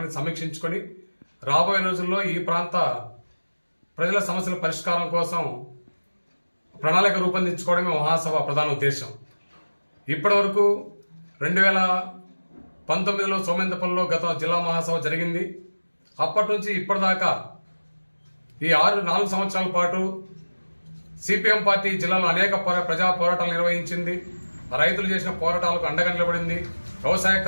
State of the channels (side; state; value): both; inverted; correlation -1.00